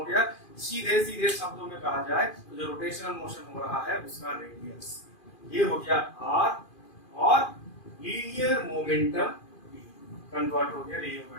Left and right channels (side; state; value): right; late; 2.4 ms